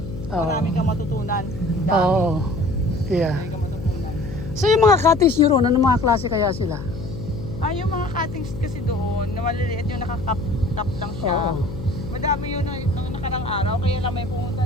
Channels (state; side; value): noise; left; hum, 10 dB below the sound